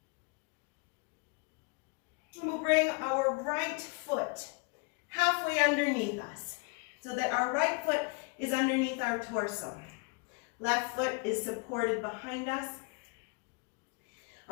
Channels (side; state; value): right; quieter; 31.5 dB